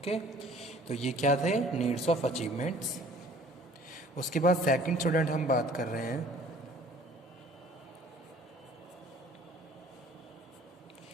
तो ये क्या थे नीड्स ऑफ अचीवमेंट्स। उसके बाद सेकंड स्टूडेंट हम बात कर रहे हैं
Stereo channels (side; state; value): both; normal; correlation 0.52